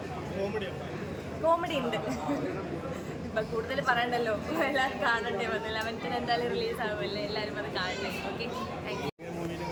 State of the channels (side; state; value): both; identical; correlation 1.00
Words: കോമഡി ഉണ്ട്. ഇപ്പം കൂടുതൽ പറയണ്ടല്ലോ, എല്ലാവരും കാണണ്ടേ. 11th എന്തായാലും റിലീസ് ആവുമല്ലേ, എല്ലാവരും അത് കാണണ്ടേ. Okay, thank you.